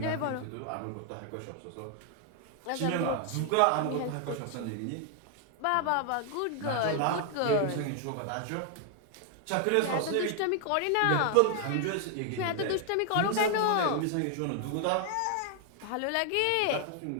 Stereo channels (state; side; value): different; both; correlation 0.00